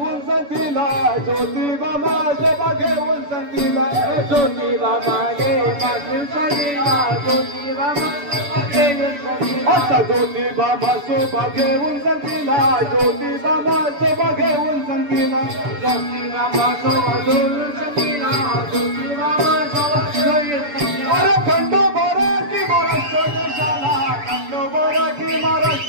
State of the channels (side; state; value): left; late; 6.9 ms